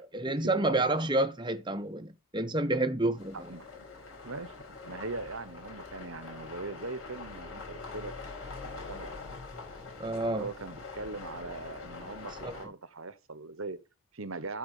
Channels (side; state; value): both; normal; correlation 0.27